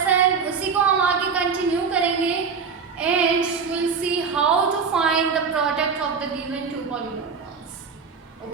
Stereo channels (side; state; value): left; quieter; 5.7 dB